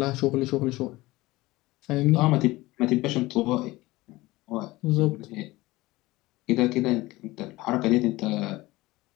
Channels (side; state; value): right; quieter; 19.6 dB